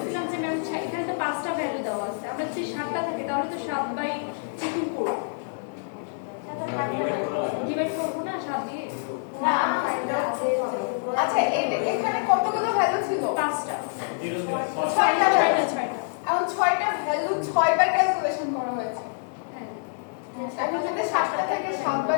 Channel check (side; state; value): right; silent; 61 dB below the other